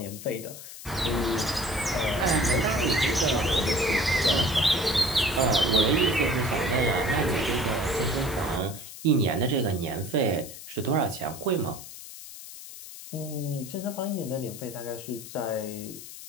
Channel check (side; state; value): left; noise; hiss, 13 dB below the sound